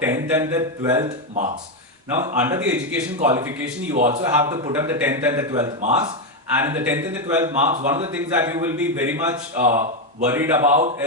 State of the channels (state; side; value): normal; both; correlation 0.06